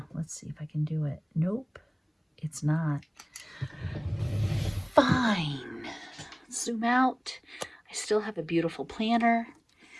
Let's see if I can do it. Nope, it's not. Fine. Zoom out. I still have a beautiful planner.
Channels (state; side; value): identical; both; correlation 1.00